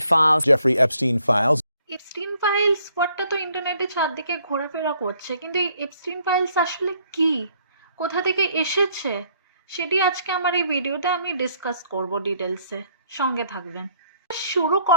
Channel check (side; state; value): both; inverted; correlation -0.66